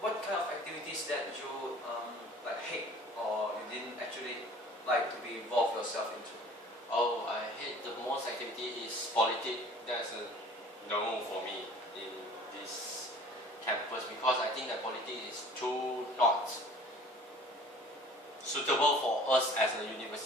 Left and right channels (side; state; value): both; normal; correlation 0.48